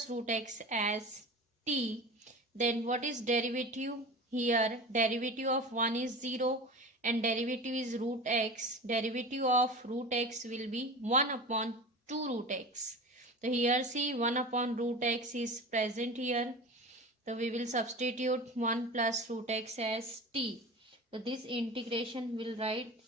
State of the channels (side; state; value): both; normal; correlation 0.33